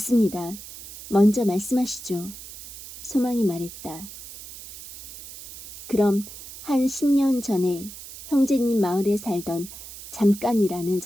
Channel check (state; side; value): noise; right; hiss, 14 dB below the sound